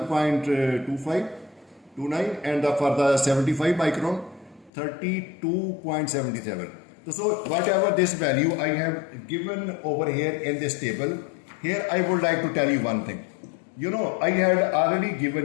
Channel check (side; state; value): right; drops out; at 4.7 s